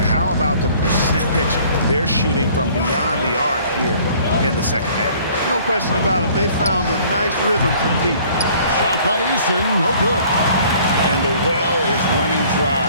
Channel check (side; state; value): both; inverted; correlation -0.55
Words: how about the percentage they're shooting from beyond the arc here in the second half? No question about it. They found a nice rhythm from deep. Shot by Eason, no good. And the well is running dry